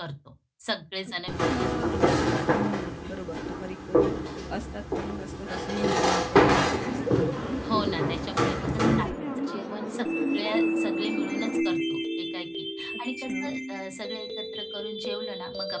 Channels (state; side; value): identical; both; correlation 1.00